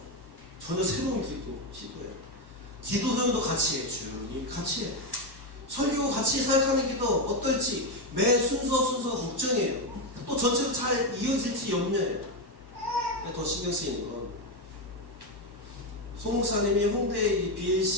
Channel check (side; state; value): left; late; 1.1 ms